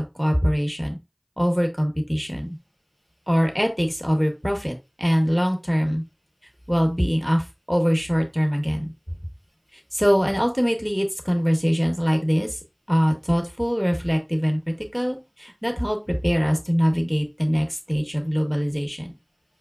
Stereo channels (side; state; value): both; identical; correlation 1.00